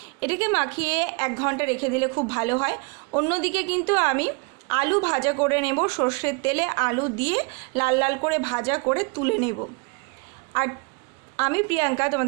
এটাকে মাখিয়ে 1 ঘন্টা রেখে দিলে খুব ভালো হয়। অন্যদিকে কিন্তু আমি আলু ভাজা করে নেব, সর্ষের তেলে আলু দিয়ে লাল লাল করে ভাজা করে তুলে নেব। আর আমি প্রিয়াঙ্কা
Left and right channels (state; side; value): quieter; left; 32.4 dB